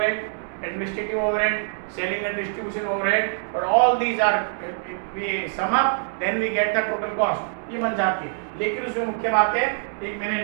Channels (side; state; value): left; silent; 62 dB below the other